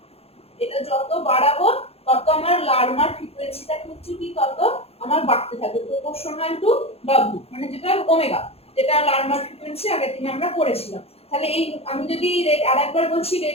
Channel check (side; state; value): right; late; 0.29 ms